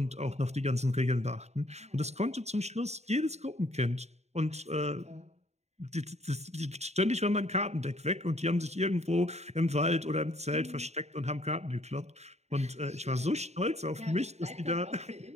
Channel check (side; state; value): left; late; 0.32 ms